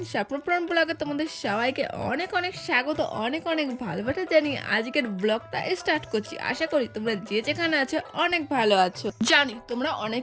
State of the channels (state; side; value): identical; both; correlation 1.00